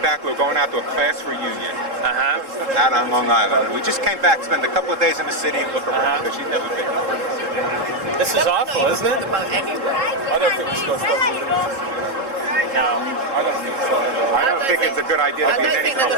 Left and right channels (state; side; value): late; left; 3.7 ms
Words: We were going out to a class reunion Uh-huh. out on Long Island. And we just came back, spent a couple of days in the city and look around because she'd never been. This is awful, isn't it? About anywhere. I don't think we should go stop moving. No. I don't think so. I don't think it's a good idea I to be in don't any think they're